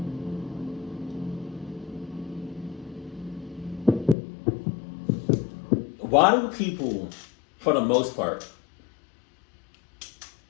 Why do people, for the most part,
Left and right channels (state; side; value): drops out; right; at 4.2 s